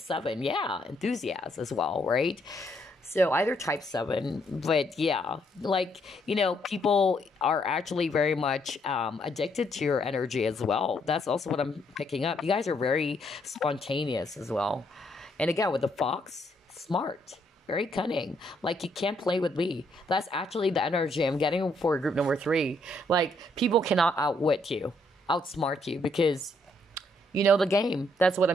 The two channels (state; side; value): normal; both; correlation 0.72